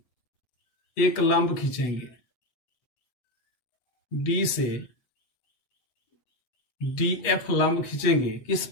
एक लंब खींचेंगे, D से DF लंब खींचेंगे किस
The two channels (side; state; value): right; late; 8.2 ms